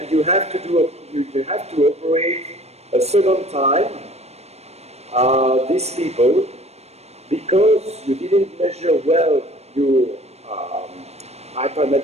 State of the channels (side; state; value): left; late; 0.31 ms